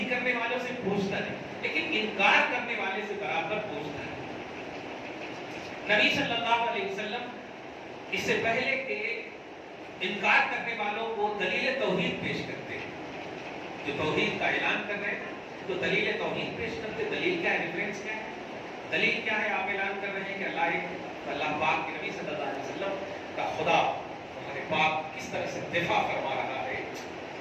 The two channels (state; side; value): identical; both; correlation 1.00